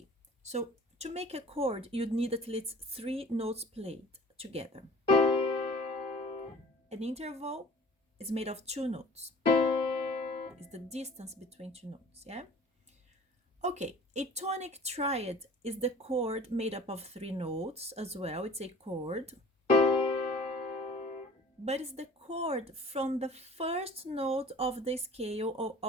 so to make a chord, you'd need at least 3 notes played together. An interval is made of 2 notes. It's the distance between 2 notes, yeah? Okay, a tonic triad is the chord made up of 3 notes as well. It's a chord. But it's the chord from the first note of the scale or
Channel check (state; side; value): normal; both; correlation 0.45